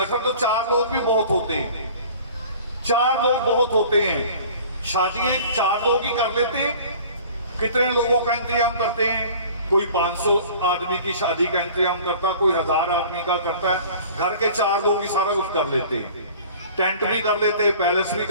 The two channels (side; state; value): both; inverted; correlation -0.46